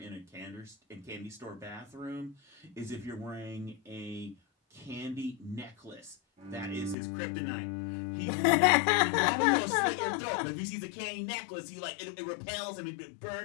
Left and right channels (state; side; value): drops out; right; at 7.0 s